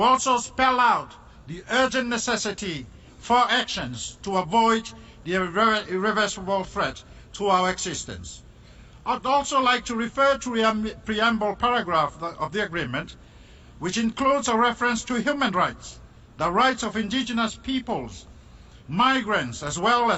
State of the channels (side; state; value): both; identical; correlation 1.00